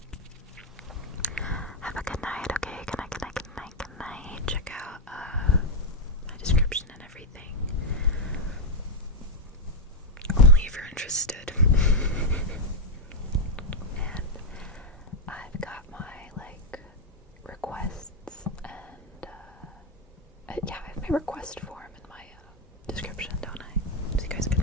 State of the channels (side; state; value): both; normal; correlation 0.02